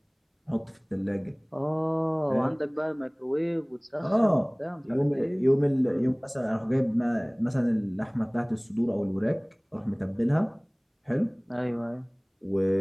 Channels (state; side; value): identical; both; correlation 1.00